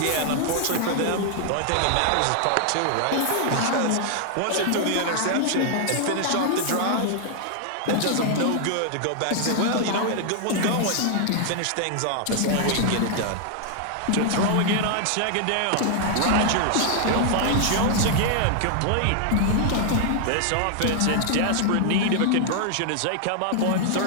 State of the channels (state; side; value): different; both; correlation 0.00